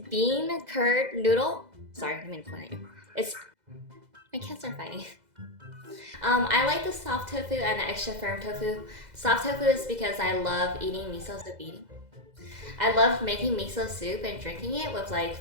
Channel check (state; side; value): late; left; 2.0 ms